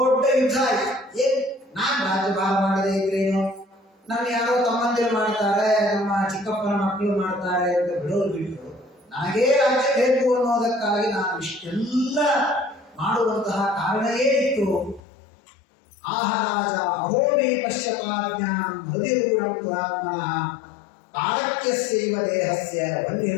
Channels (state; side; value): drops out; right; at 15.0 s